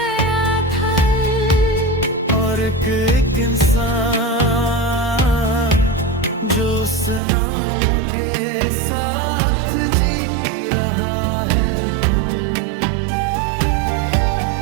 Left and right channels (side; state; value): left; drops out; at 7.2 s